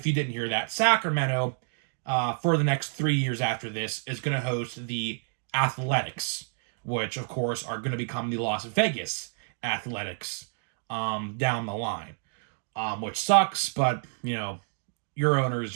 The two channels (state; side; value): silent; left; 56 dB below the other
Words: hear that, Sacramento, for the next 3 years after this, is going to host the Athletics, which of course are going to become the Las Vegas Athletics down the line, which sucks, but your owner is